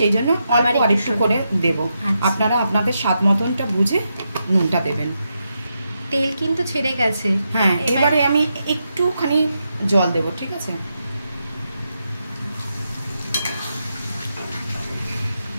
জন্য আবার একটু করে দেবো। আপনারা আপনাদের স্বাদ মতনটা বুঝে নুনটা দেবেন। তেল কিন্তু ছেড়ে গেছে। হ্যাঁ, এবারে আমি একটুখানি জল দেবো, ঠিক আছে?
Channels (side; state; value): both; inverted; correlation -0.84